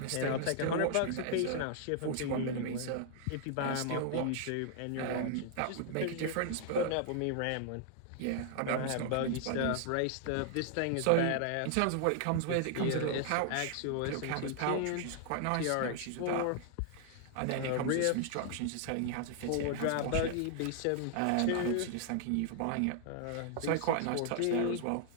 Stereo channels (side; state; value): both; different; correlation -0.01